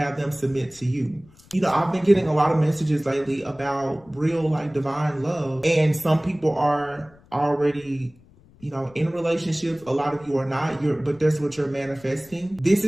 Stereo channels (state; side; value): noise; left; rumble, 26 dB below the sound